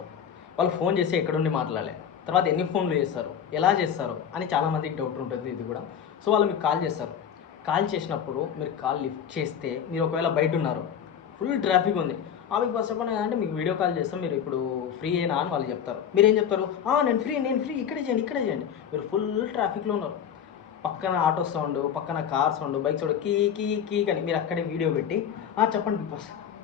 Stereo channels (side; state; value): right; quieter; 8.5 dB